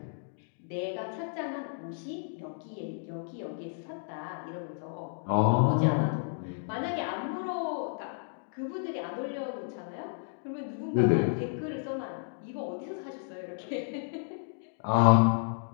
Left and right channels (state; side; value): silent; right; digital silence